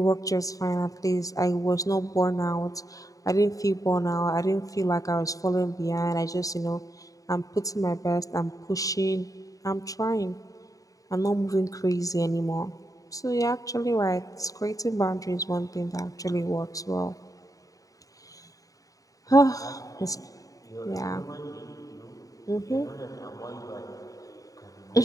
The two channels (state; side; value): late; right; 0.17 ms